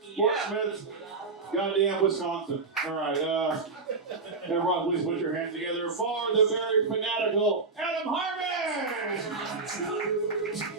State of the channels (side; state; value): left; quieter; 4.1 dB